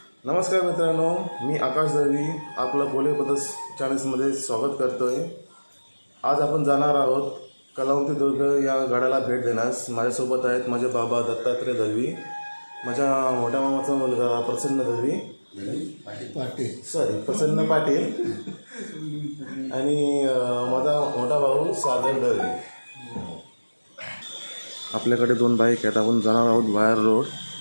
नमस्कार मित्रांनो, मी आकाश दळवी आपलं पोले पदस चॅनल्समध्ये स्वागत करतोय। आज आपण जाणार आहोत कलावंती दुर्ग या गडाला भेट देण्यास। माझ्यासोबत आहेत माझे बाबा दत्तात्रय दळवी, माझ्या मोठ्या मामाचा मुलगा प्रसन्न दळवी प्रसन्न पाटील आणि माझा मोठा भाऊ सागर दळवी। आपल्याकडे 2 बाईक आहेत। आपण जाणार आहोत वायर रोड,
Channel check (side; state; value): both; inverted; correlation -1.00